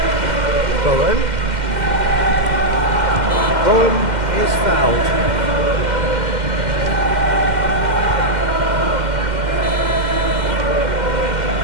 Bowen. Bowen is fouled.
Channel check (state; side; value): late; left; 2.1 ms